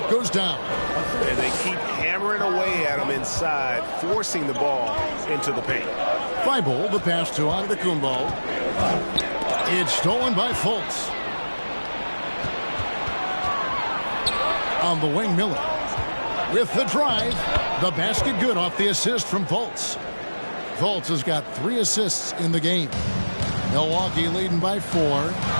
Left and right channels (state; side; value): inverted; both; correlation -1.00